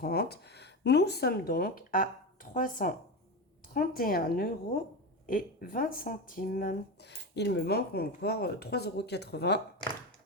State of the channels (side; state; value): both; normal; correlation 0.20